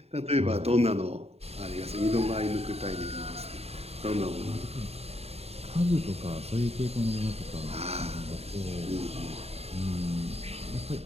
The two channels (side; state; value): left; late; 0.30 ms